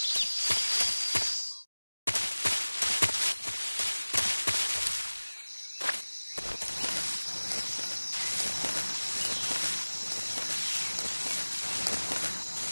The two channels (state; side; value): inverted; both; correlation -1.00